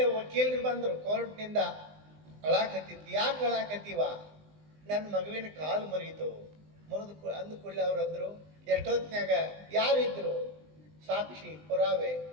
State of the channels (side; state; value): left; late; 20 ms